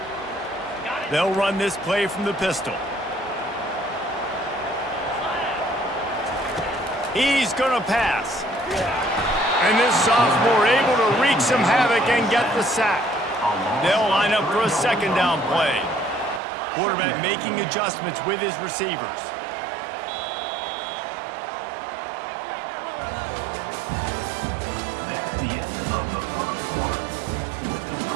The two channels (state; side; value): drops out; left; at 16.4 s